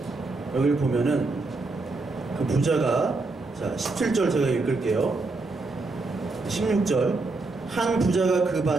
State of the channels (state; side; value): quieter; left; 3.5 dB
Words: 여기를 보면은 그 부자가, 자 17절 제가 읽을게요. 16절. 한 부자가 그